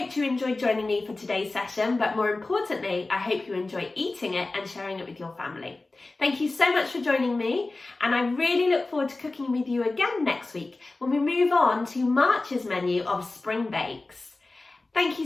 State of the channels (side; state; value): right; quieter; 3.3 dB